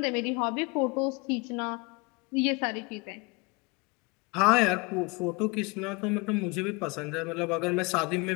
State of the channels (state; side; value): quieter; right; 27.6 dB